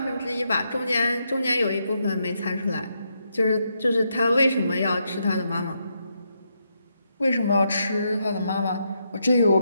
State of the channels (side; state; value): both; inverted; correlation -0.81